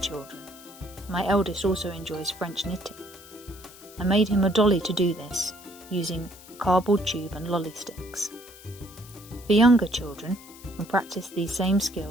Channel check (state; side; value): noise; left; hiss, 20 dB below the sound